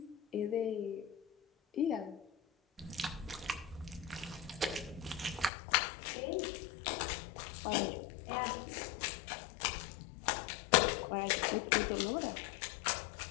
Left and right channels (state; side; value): drops out; right; at 5.5 s